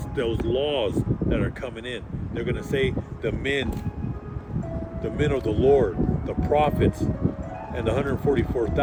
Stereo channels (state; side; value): identical; both; correlation 1.00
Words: those laws that are coming in. They're going to say the men of the Lord, the prophets, and the